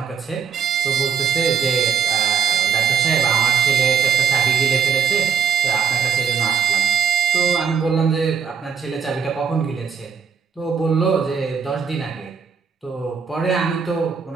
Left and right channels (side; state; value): left; quieter; 6.7 dB